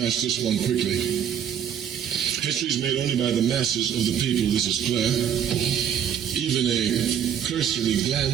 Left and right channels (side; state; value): left; quieter; 9.0 dB